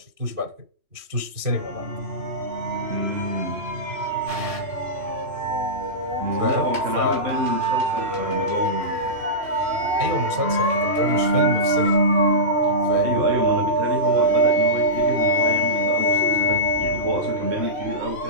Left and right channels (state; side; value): late; left; 3.1 ms